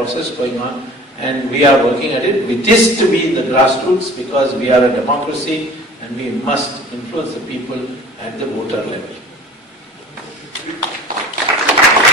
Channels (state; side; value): normal; both; correlation 0.44